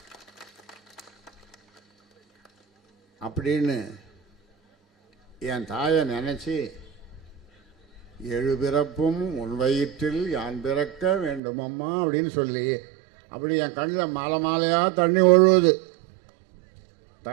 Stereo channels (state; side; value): drops out; left; at 11.4 s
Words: அப்படின்னு என் தாயை நினைச்சு 7 பிறப்பும் உன் வயிற்றில் யான் பிறக்க வேண்டும் அம்மா அப்படின்னு சொல்லி, அப்படி என் கண்ணில் மாலை மாலையாக தண்ணி ஒழுகுது.